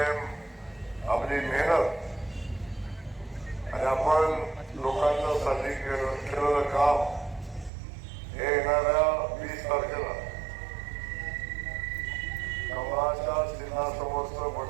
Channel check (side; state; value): left; drops out; at 7.7 s